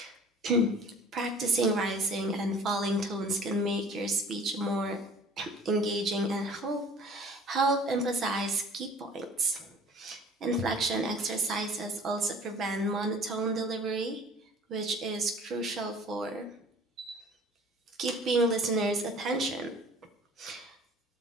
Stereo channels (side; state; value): both; normal; correlation 0.48